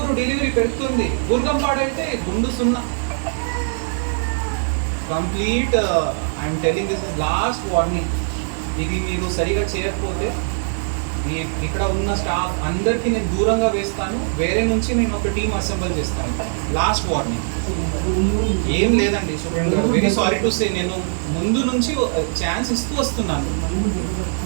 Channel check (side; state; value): left; silent; digital silence